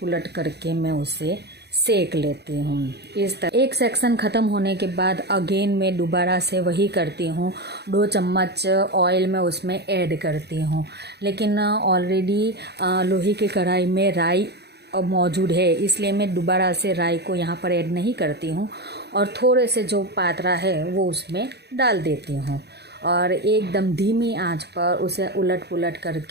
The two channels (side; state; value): left; late; 0.48 ms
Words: करके मैं उसे सेक लेती हूँ। इस तरह एक सेक्शन ख़त्म होने के बाद अगेन मैं दोबारा से वही करती हूँ। 2 चम्मच ऑयल में उसमें ऐड करती हूँ, लेकिन ऑलरेडी लोहे की कढ़ाई में राई मौजूद है इसलिए मैं दोबारा से राई को यहाँ पर ऐड नहीं करती हूँ और थोड़े से जो पात्रा है वो उसमें डाल देती हूँ और एकदम धीमी आंच पर उसे उलट पुलट